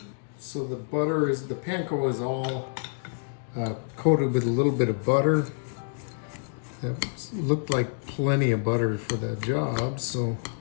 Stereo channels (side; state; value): right; silent; digital silence